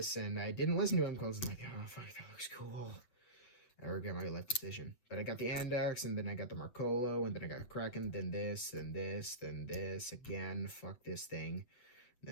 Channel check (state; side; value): late; right; 8.1 ms